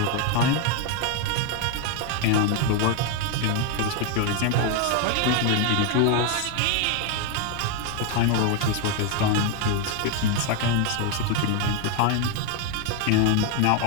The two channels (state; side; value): different; both; correlation 0.01